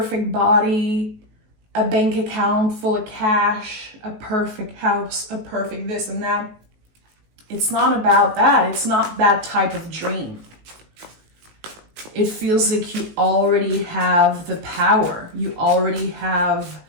body, a bank account full of cash, a perfect house, a perfect this and that. It's not about that. It's not that type of dream. It feels like you already have the power. You already have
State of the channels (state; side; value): late; left; 19 ms